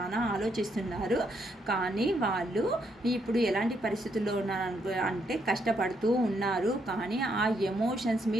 ఆలోచిస్తున్నారు. కానీ వాళ్ళు ఇప్పుడు ఎలాంటి పరిస్థితుల్లో ఉన్నారు అంటే కష్టపడుతూ ఉన్నారు. కానీ ఆ ఎమోషన్స్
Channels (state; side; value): normal; both; correlation 0.75